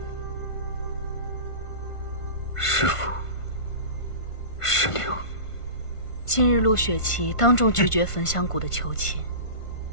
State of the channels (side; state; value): right; late; 1.5 ms